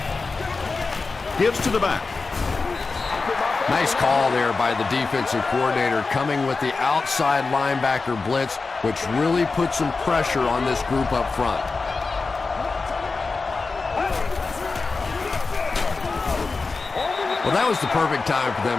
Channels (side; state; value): right; quieter; 4.1 dB